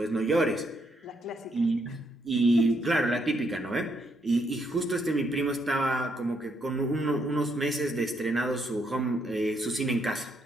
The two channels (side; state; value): both; normal; correlation 0.75